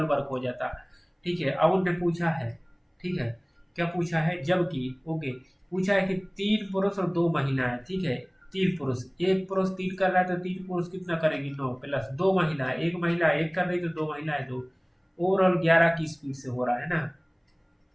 वर्क हो जाता, ठीक है। अब उनने पूछा है, ठीक है, क्या पूछा है, जबकि, ओके, पूछा है कि 3 पुरुष और 2 महिलाएं, ठीक है। 3 पुरुष, एक पुरुष 3 कर रहा है, तो 3 पुरुष कितना करेगी, 9 प्लस 2 महिलाएं, एक महिला 1 कर रही, तो 2 महिलाएं 2, ओवरऑल 11 की स्पीड से हो रहा है ना,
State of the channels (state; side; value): identical; both; correlation 1.00